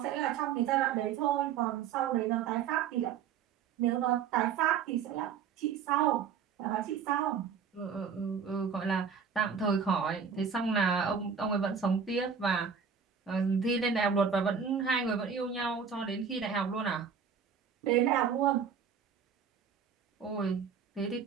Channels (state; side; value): quieter; left; 6.9 dB